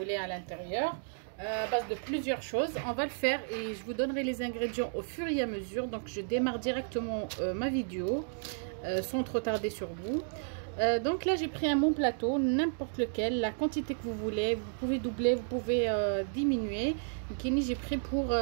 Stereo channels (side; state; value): left; silent; digital silence